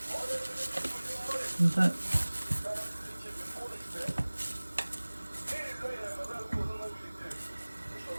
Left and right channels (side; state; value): both; inverted; correlation -1.00